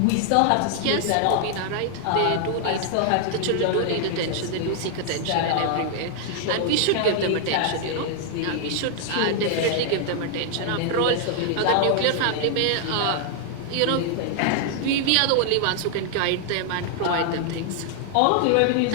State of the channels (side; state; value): both; different; correlation 0.00